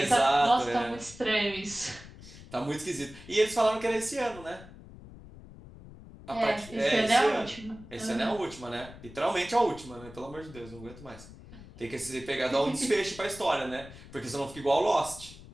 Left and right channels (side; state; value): left; noise; rumble, 17 dB below the sound